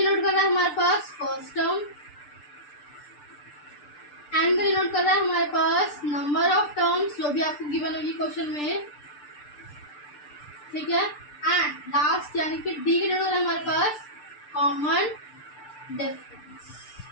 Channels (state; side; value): late; right; 6.7 ms